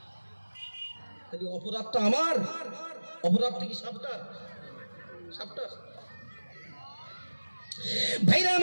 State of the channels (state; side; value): inverted; both; correlation -1.00